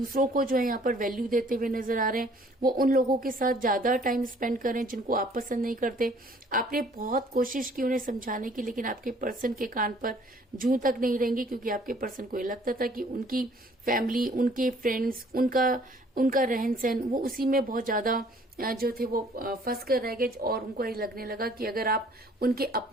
को जो है यहाँ पर वैल्यू देते हुए नजर आ रहे हैं, वो उन लोगों के साथ ज्यादा टाइम स्पेंड कर रहे हैं जिनको आप पसंद नहीं करते। आपने बहुत कोशिश की उन्हें समझाने की, लेकिन आपके पर्सन के कान पर जूं तक नहीं रहेंगी, क्योंकि आपके पर्सन को ये लगता था कि उनकी फैमिली, उनके फ्रेंड्स, उनका रहन सहन, वो उसी में बहुत ज्यादा जो थे वो फंस कर रह गए। और उनको ये लगने लगा कि अगर आप उनके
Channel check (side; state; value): both; normal; correlation 0.58